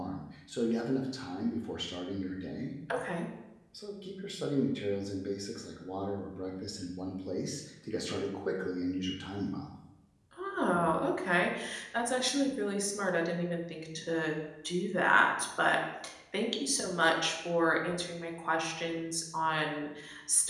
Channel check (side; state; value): both; identical; correlation 1.00